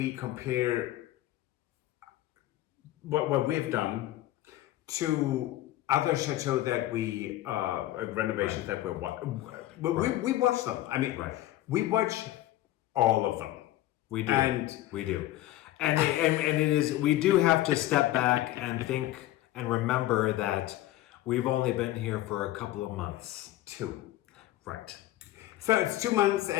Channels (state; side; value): quieter; right; 15.0 dB